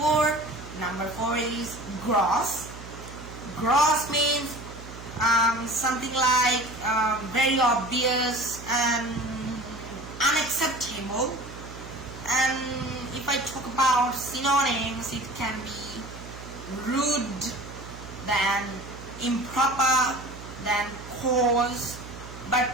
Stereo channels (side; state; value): right; noise; hum, 14 dB below the sound